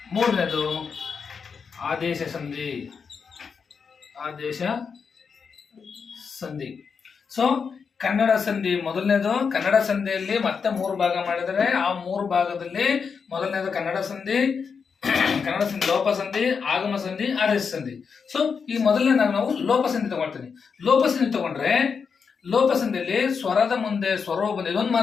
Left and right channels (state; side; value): quieter; right; 5.9 dB